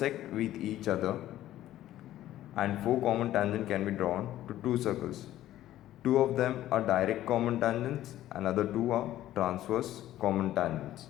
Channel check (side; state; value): right; quieter; 13.6 dB